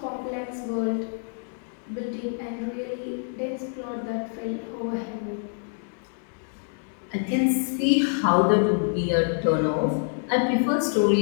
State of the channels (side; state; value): right; silent; 58 dB below the other